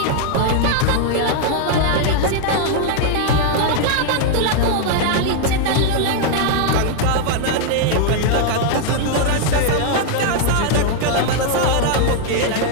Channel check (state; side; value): different; both; correlation 0.00